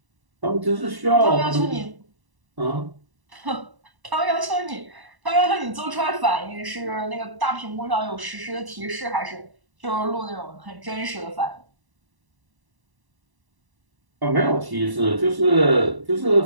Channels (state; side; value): late; left; 1.0 ms